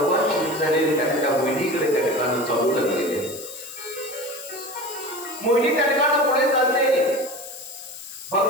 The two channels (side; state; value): left; noise; hiss, 13 dB below the sound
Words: शिव झालेले त्या मोहिनीकडे त्या ठिकाणी चालू लागलेले. मोहिनी त्या ठिकाणी पुढे चालते.